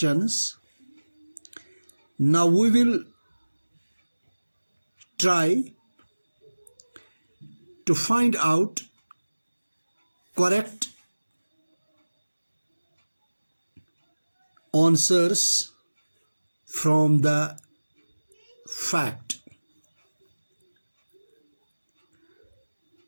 Now we will try to find out correct answers from the fact.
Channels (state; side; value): inverted; both; correlation -1.00